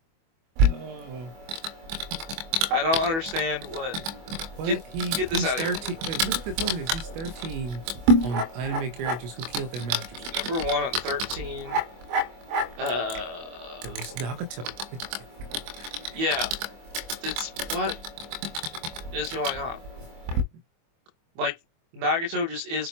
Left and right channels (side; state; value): left; late; 25 ms